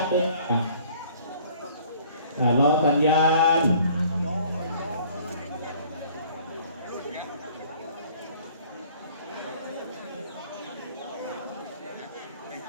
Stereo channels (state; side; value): inverted; both; correlation -0.55